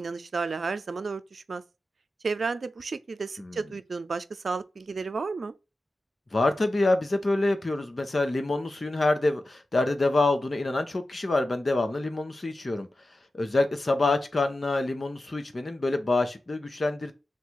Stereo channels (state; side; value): normal; both; correlation 0.93